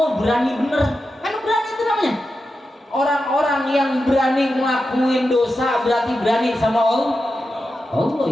berani bener, kan berani itu namanya. Orang-orang yang berani ngelakuin dosa berarti berani sama Allah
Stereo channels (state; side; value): normal; both; correlation 0.90